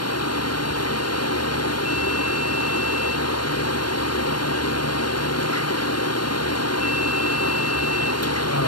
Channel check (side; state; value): right; late; 0.71 ms